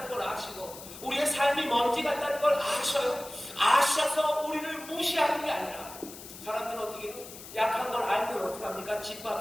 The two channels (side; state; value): left; noise; hiss, 14 dB below the sound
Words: 걸 아시고 우리의 삶이 먼지 같다는 걸 아셔요. 아셔서 우리를 무시하는 게 아니라 사람들은 어떻게 해요? 약한 걸 알면 어떻게 합니까?